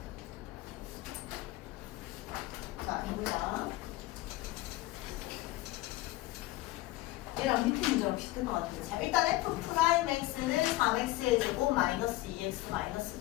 자, 해보자. 얘랑 밑에 문제랑 비슷한 것 같은데. 자, 일단 F'X는 3X의 제곱 마이너스 2X 마이너스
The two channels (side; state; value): right; quieter; 18.1 dB